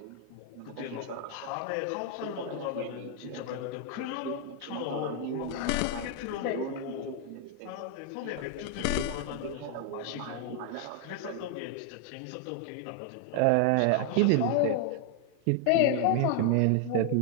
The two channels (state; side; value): different; both; correlation 0.00